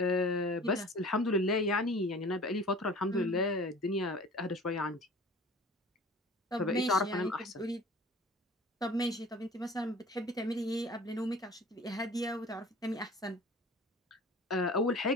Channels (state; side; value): normal; both; correlation 0.44